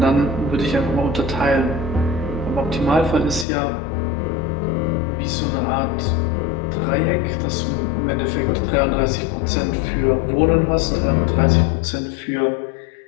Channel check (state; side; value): drops out; right; at 3.5 s